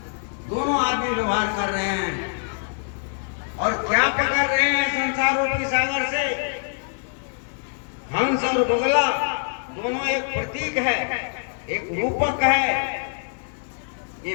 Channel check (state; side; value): silent; right; 62 dB below the other